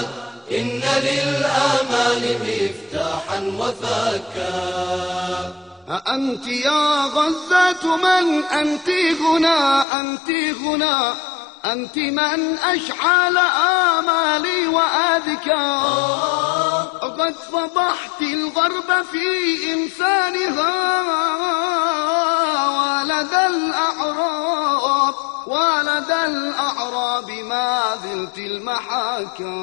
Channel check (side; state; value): right; drops out; at 9.9 s